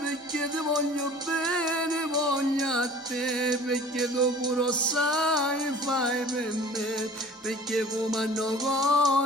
perché ti voglio bene, voglio a te perché tu pure sai fai per me, perché come hanno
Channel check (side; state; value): both; normal; correlation 0.46